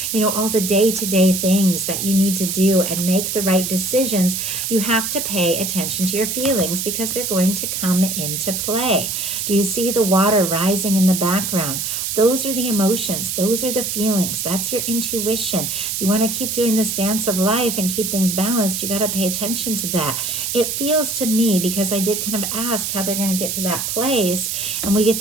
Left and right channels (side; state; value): right; noise; hiss, 2 dB below the sound